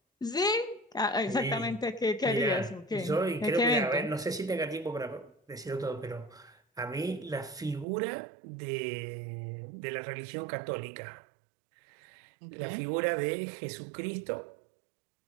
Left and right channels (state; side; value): drops out; left; at 7.9 s